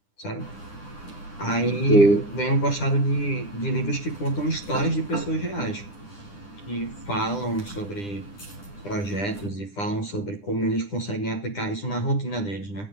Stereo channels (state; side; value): late; right; 9.9 ms